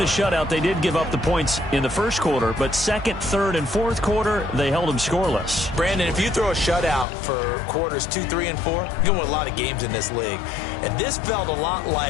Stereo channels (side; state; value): right; drops out; at 7.1 s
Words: a shutout. They did give up the points in the first quarter, but second, third, and fourth quarter, they held them scoreless. Brandon, if you throw a shutout for quarters 2, 3, and 4, you're going to win a lot of games in this league. And this felt a lot